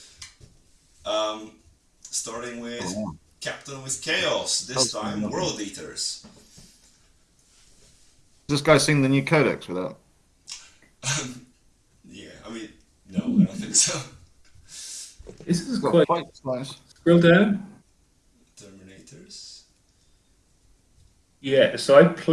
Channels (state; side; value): identical; both; correlation 1.00